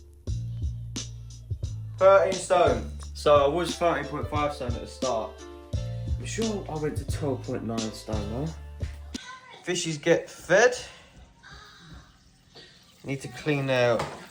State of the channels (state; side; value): identical; both; correlation 1.00